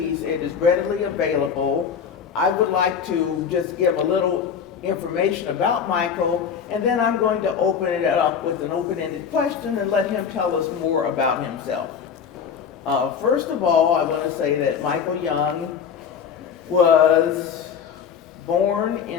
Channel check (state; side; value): quieter; right; 7.1 dB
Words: It is readily available. I would like to just give a little information about Michael, and then I'm going to open it up with an open-ended question and let him tell us more about himself. First of all, I want to say that Michael Young was born